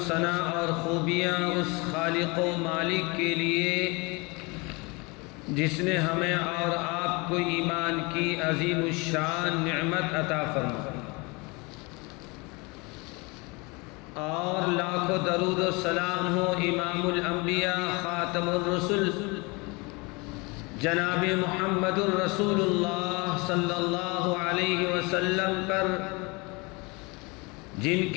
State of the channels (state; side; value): quieter; right; 27.3 dB